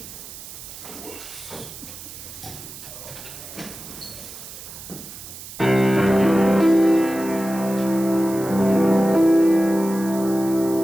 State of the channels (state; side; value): noise; right; hiss, 14 dB below the sound